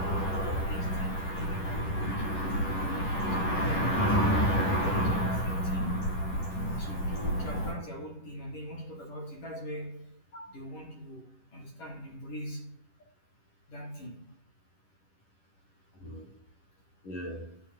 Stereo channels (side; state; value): right; late; 10 ms